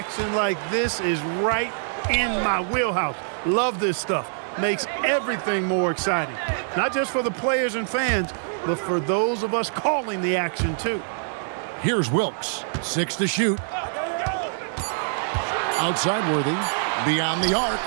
like this is right in my wheelhouse. Love this stuff. Makes everything more exciting. Not just for the players and fans, but for those of us calling the action, too. Here's Wilkes. 6 to shoot. Outside Worthy. Beyond the arc.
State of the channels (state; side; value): silent; left; 62 dB below the other